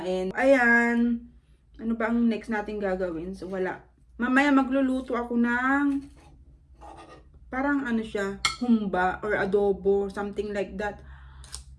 Ayan. Ano ba ang next natin gagawin? So, wala. Mamaya magluluto ako ng parang siya, humba or adobo. Something like that.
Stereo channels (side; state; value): both; identical; correlation 1.00